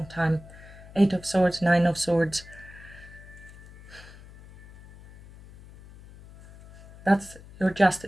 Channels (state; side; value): noise; left; hum, 20 dB below the sound